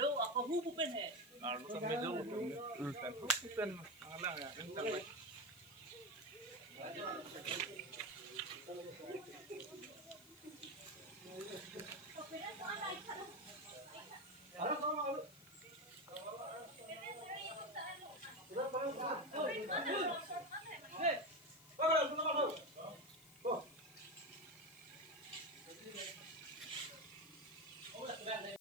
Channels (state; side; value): noise; left; hiss, 21 dB below the sound